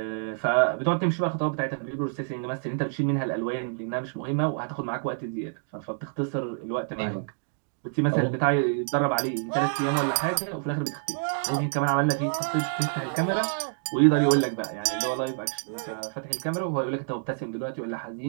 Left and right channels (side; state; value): left; silent; digital silence